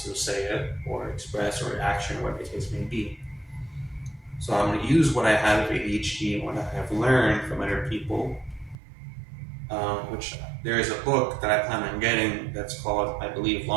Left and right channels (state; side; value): drops out; left; at 8.8 s